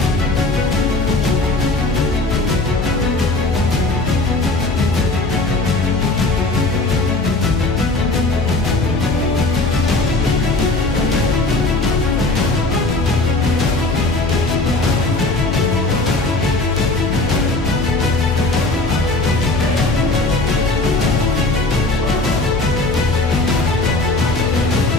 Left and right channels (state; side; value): quieter; right; 3.1 dB